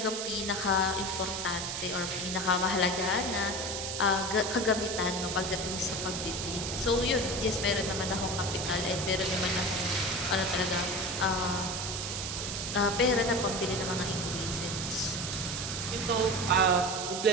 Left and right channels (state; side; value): noise; right; hiss, 4 dB below the sound